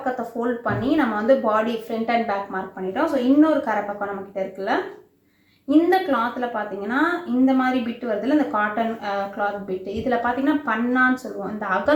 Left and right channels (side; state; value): both; identical; correlation 1.00